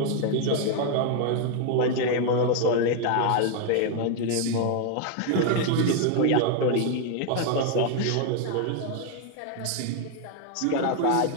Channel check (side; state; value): both; different; correlation 0.01